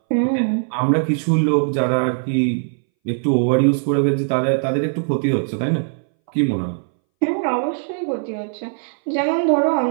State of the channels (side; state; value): left; silent; 63 dB below the other